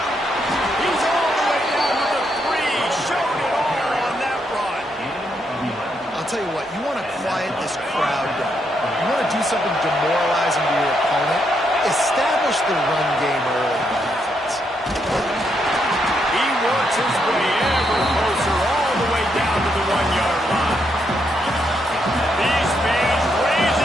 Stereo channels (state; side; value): normal; both; correlation 0.78